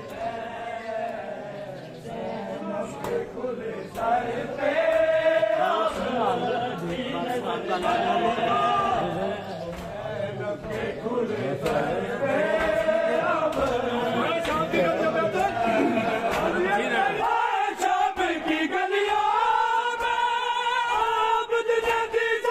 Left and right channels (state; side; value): identical; both; correlation 1.00